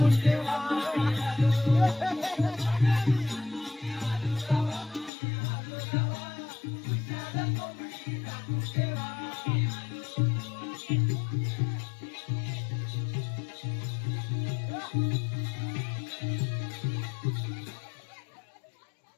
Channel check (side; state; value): right; drops out; at 5.1 s